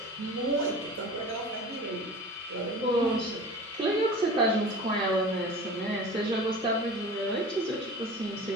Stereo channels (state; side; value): normal; both; correlation 0.37